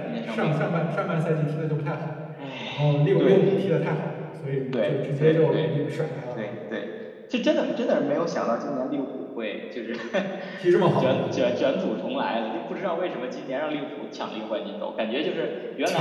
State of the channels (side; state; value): both; identical; correlation 1.00